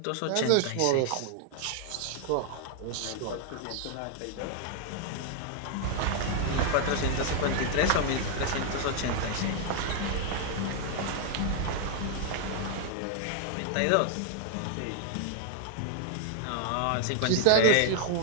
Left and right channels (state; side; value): different; both; correlation 0.00